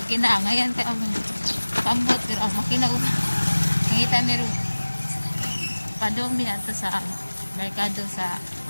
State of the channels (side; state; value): both; inverted; correlation -1.00